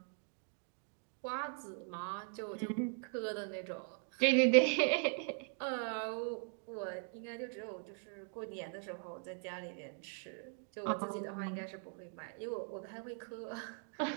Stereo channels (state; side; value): silent; left; 51 dB below the other